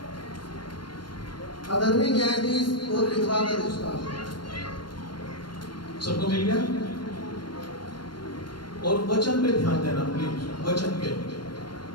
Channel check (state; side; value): late; right; 0.72 ms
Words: अधर्मी न्यायाधीश और विधवा का रिश्ता। सबको मिल गया? और वचन पे ध्यान देना प्लीज, वचन पे।